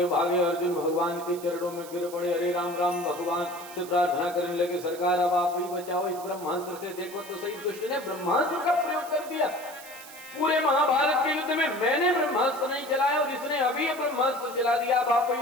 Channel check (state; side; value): noise; right; hiss, 17 dB below the sound